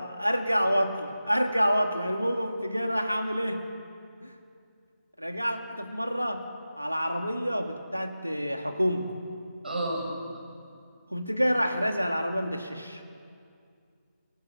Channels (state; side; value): inverted; both; correlation -0.93